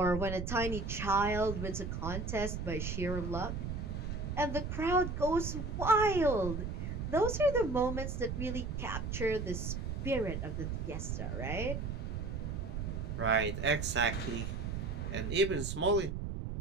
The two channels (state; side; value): noise; right; rumble, 4 dB below the sound